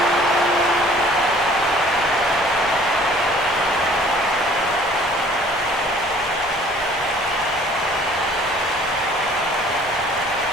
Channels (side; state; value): both; normal; correlation 0.53